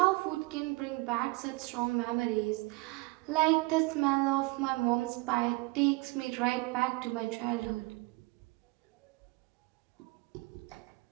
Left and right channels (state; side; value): quieter; left; 24.7 dB